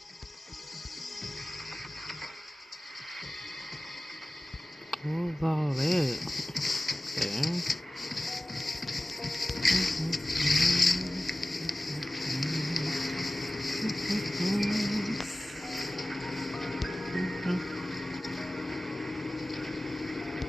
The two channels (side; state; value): both; normal; correlation 0.97